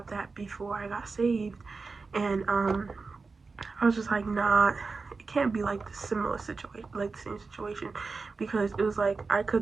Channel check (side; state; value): left; quieter; 4.3 dB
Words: that before I got saved, and I was just like, nah, it can't be like the similar situation, like the same situation, because it was like I